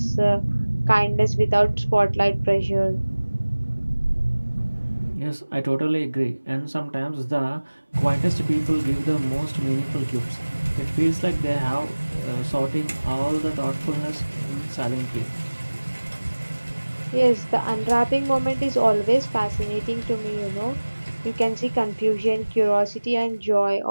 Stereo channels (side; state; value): both; inverted; correlation -1.00